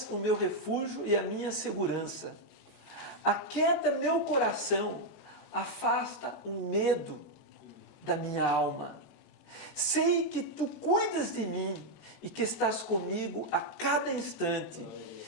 o meu refúgio e a minha segurança. Aquieta meu coração, afasta o medo da minha alma. Sei que Tu cuidas de mim e que estás comigo a cada instante,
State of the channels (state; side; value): late; right; 14 ms